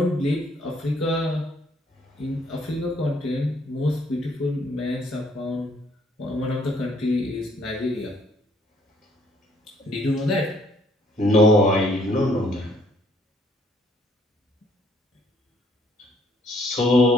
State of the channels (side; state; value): both; normal; correlation 0.65